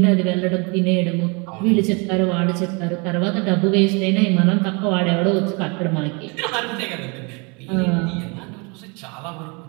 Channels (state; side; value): quieter; left; 31.2 dB